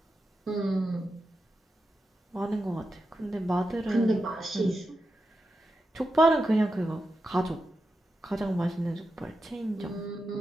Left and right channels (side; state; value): both; normal; correlation 0.89